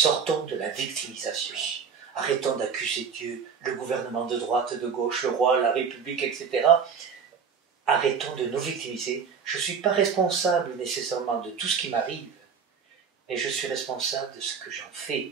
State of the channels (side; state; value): left; quieter; 6.3 dB